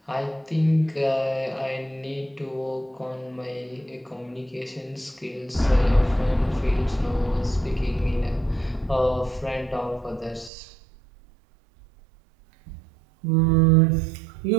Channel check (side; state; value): left; drops out; at 10.5 s